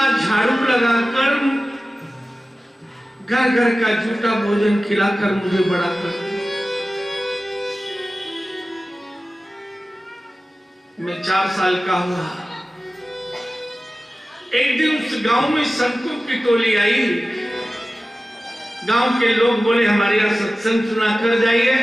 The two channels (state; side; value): normal; both; correlation 0.96